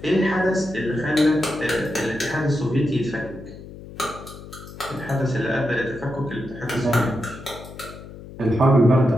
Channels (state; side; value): noise; left; hum, 15 dB below the sound